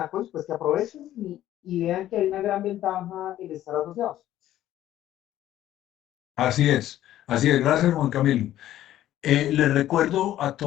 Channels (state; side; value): quieter; right; 13.0 dB